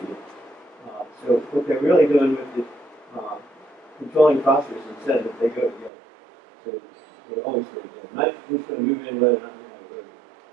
it. So what they're really doing with it, controlling phosphorus and sediment, they go together. So they always go together. Nitrogen's going to move in whether or not you have it. Of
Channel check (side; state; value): left; drops out; at 5.9 s